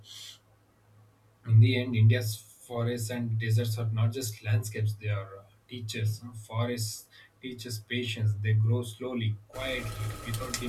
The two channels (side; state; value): both; identical; correlation 1.00